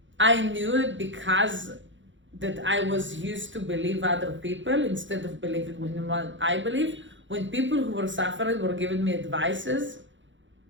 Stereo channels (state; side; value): late; left; 0.55 ms